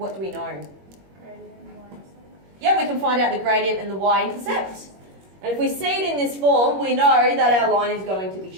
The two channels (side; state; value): left; late; 21 ms